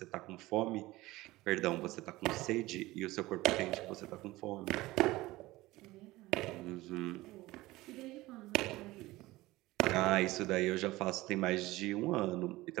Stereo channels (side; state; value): left; quieter; 18.9 dB